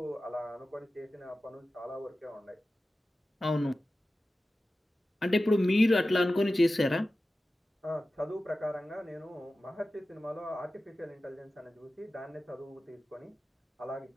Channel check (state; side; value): normal; both; correlation 0.94